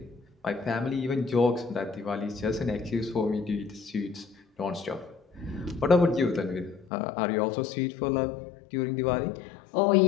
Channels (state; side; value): drops out; right; at 6.9 s